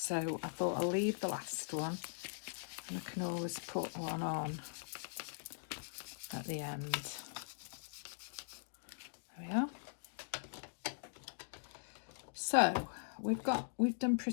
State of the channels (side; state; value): right; silent; digital silence